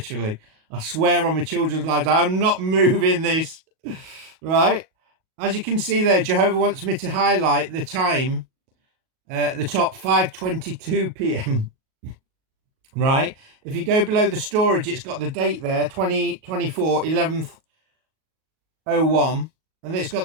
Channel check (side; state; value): left; late; 38 ms